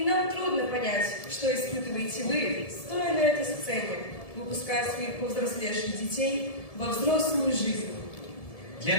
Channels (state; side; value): late; right; 1.7 ms